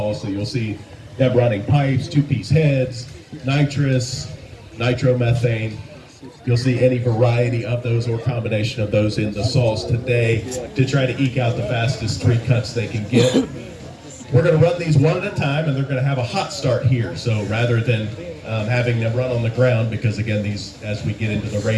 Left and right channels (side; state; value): both; identical; correlation 1.00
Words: So you'll see them running pipes, two-piece heads, nitrous, nitromethane. You'll see any variety of those or combination of those in the saws today to try to eke out the fastest 3 cuts they can get. We're going to run these one at a time, and they're going to have a hot start here. So rather than having them run on the ground, because again, these, as we get into the